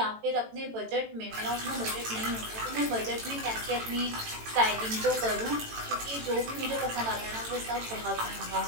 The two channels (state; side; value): late; left; 18 ms